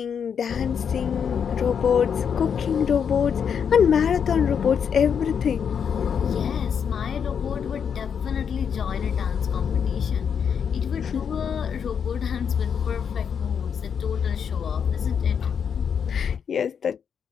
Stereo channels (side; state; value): right; quieter; 7.3 dB